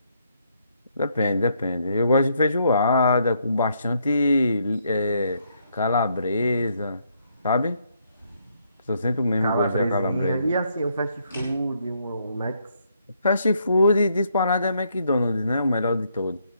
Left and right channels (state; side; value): inverted; both; correlation -0.73